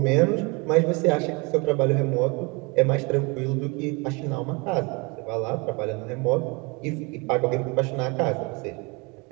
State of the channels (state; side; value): quieter; left; 28.8 dB